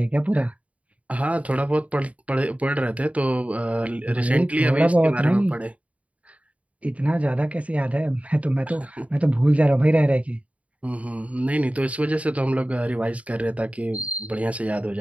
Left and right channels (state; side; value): late; left; 0.067 ms